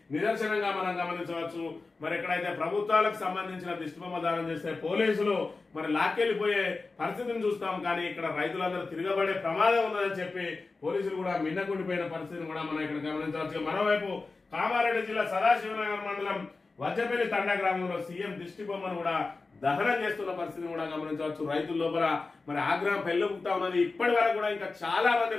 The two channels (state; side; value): quieter; right; 3.8 dB